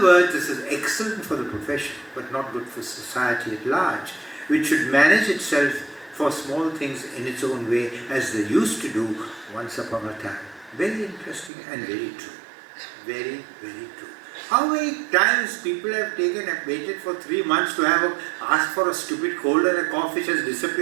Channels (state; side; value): drops out; left; at 11.5 s